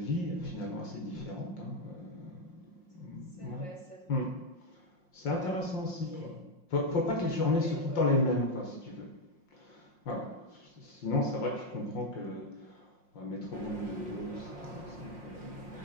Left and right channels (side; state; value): right; late; 5.6 ms